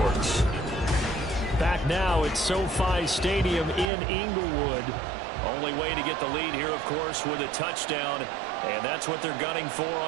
Back now at SoFi Stadium in Inglewood. Only way to get the lead here, of course, with a touchdown. And that's what they're gunning for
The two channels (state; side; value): drops out; left; at 3.9 s